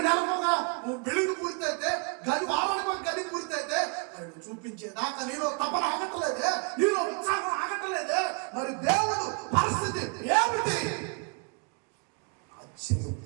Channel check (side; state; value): left; quieter; 35.9 dB